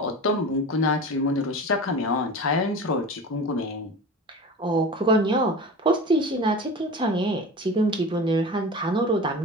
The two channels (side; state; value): both; normal; correlation 0.33